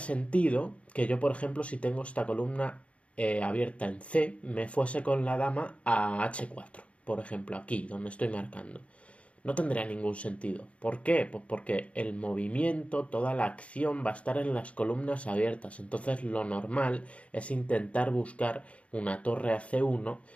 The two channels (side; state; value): right; late; 0.063 ms